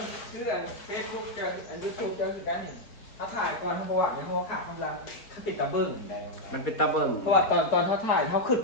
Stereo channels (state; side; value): late; right; 4.2 ms